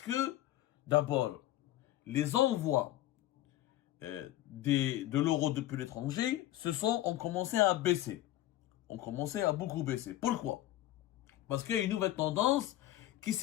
d'abord, les envois de l'euro depuis l'étranger ont commencé à baisser. Ont commencé à beaucoup baisser. Pourquoi? Parce qu'il y a une nouvelle tendance qui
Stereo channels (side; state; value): right; quieter; 14.6 dB